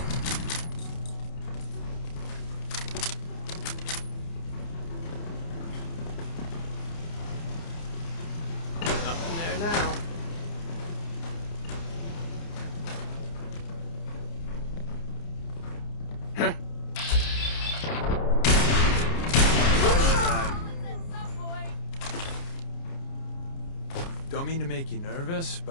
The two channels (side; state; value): right; late; 29 ms